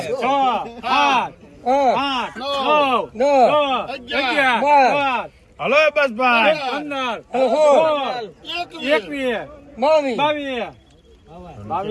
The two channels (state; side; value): identical; both; correlation 1.00